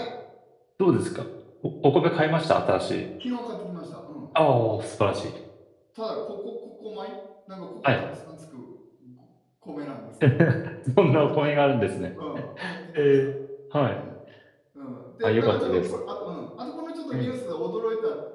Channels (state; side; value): identical; both; correlation 1.00